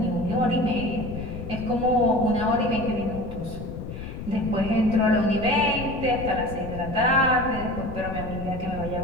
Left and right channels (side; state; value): left; noise; rumble, 8 dB below the sound